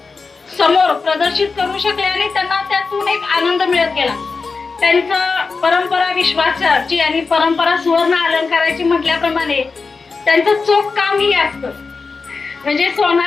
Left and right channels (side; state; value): right; quieter; 4.5 dB